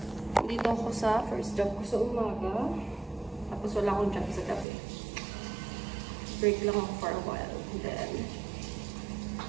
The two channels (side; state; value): left; drops out; at 4.7 s